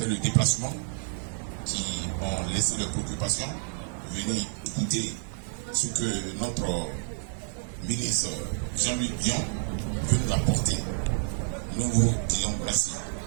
le déplacement, qui ont laissé leurs préoccupations, venir écouter ce que notre ministre Jean-Luc Dion veut nous apporter. Nous vous disons merci.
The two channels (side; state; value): left; silent; 59 dB below the other